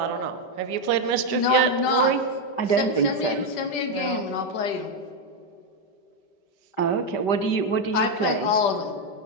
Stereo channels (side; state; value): right; late; 5.1 ms